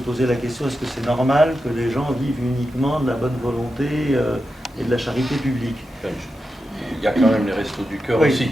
la question, est-ce que c'est normal que les gens vivent uniquement de la bonne volonté et de la charité publique? Il y a quand même les Restos du Cœur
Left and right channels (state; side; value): normal; both; correlation 0.89